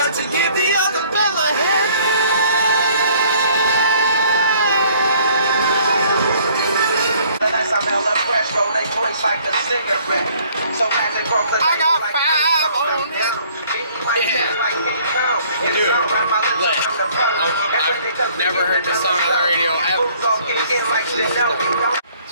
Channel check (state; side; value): inverted; both; correlation -0.58